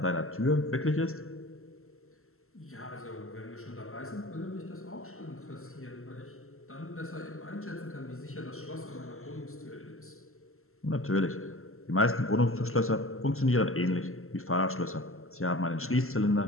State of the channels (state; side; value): late; right; 0.62 ms